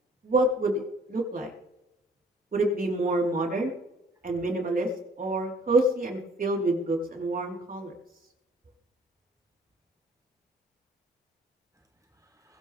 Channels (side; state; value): both; normal; correlation 0.56